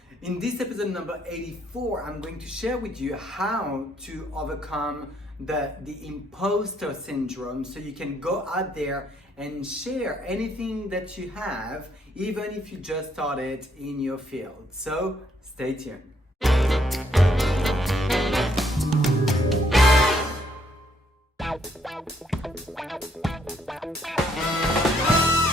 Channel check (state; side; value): normal; both; correlation 0.70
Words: In this episode number 84, I'm going to share with you how to overcome the imposter syndrome so you can go out there and share anything that you have, even if you just started in your field. So stay tuned.